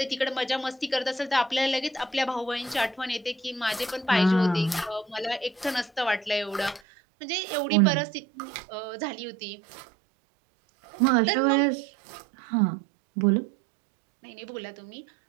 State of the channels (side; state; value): left; drops out; at 6.8 s